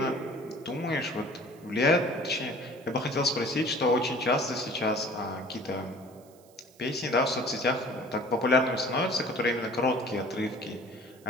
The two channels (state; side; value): noise; right; hiss, 28 dB below the sound